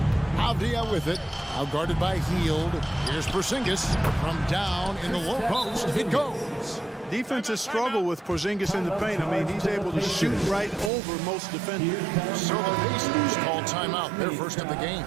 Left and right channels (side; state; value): left; drops out; at 10.9 s